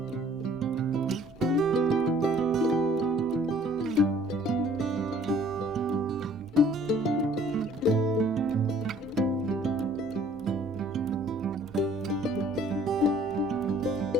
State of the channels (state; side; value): normal; both; correlation 0.56